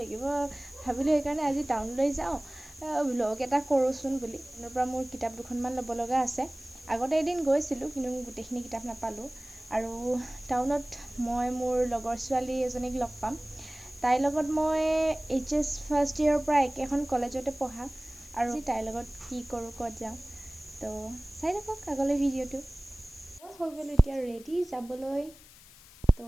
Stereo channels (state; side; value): noise; left; hiss, 22 dB below the sound